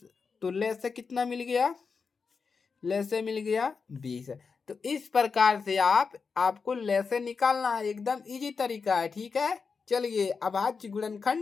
तो ले से कितना मिल गया? ले से मिल गया 20। तो इस प्रकार से आपको ले से निकालना है, एकदम इजी तरीका है। ठीक है, चलिए अभाज्य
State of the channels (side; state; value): right; quieter; 5.2 dB